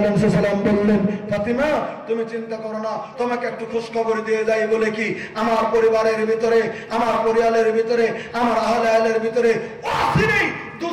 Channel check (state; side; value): identical; both; correlation 1.00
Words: সাল্লাম বললেন, ফাতেমা তুমি চিন্তা করো না, তোমাকে একটু খোঁজ খবর দিয়ে যাই বলে কি আমার পরিবারের ভিতরে, আমার পরিবারের ভিতরে, আমার আহলের ভিতরে অচিরেই